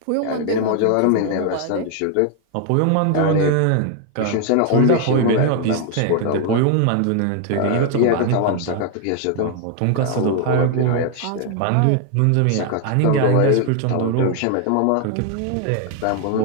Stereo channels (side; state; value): both; different; correlation 0.00